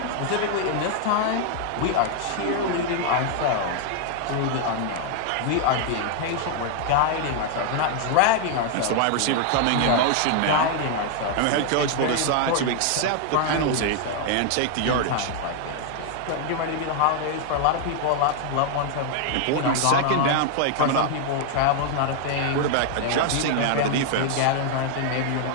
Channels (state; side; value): different; both; correlation 0.00